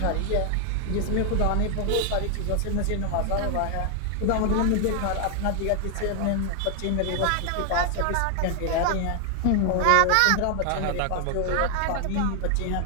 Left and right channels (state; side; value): different; both; correlation 0.00